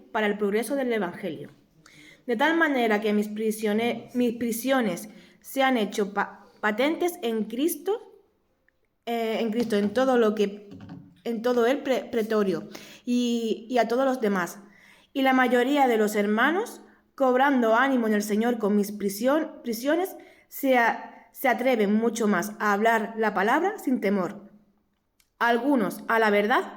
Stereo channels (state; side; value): identical; both; correlation 1.00